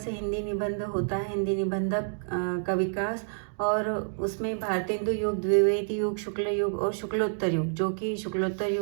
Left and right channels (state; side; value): silent; left; digital silence